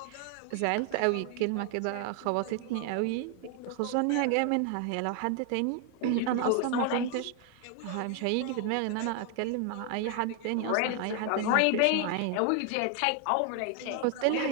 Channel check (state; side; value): different; both; correlation 0.00